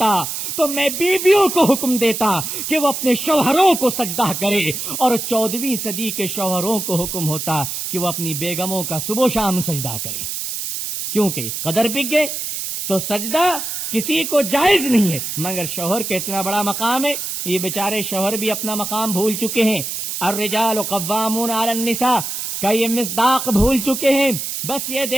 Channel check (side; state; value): right; noise; hiss, 4 dB below the sound